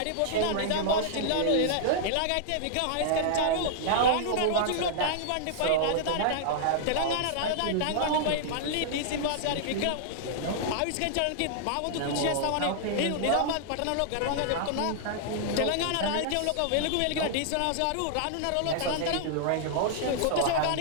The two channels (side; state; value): both; different; correlation -0.01